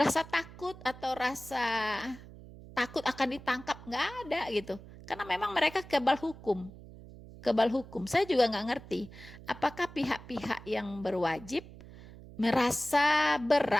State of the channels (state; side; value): noise; right; hum, 17 dB below the sound